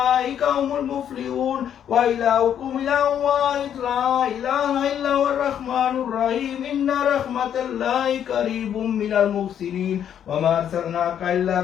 هم المفلحون وإلهكم إله واحد لا إله إلا هو الرحمن الرحيم إن رحمة الله قريب من المحسنين وما أرسلناك إلا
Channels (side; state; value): right; quieter; 9.4 dB